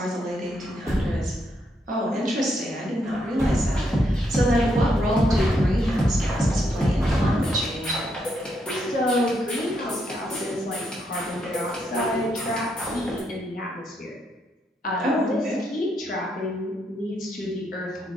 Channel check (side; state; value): both; normal; correlation 0.78